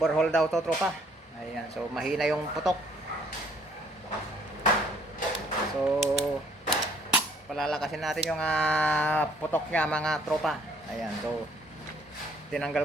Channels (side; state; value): both; normal; correlation 0.63